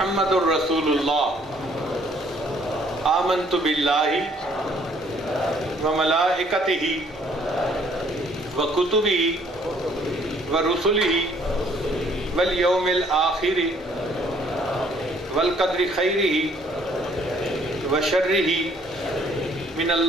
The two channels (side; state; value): both; normal; correlation 0.62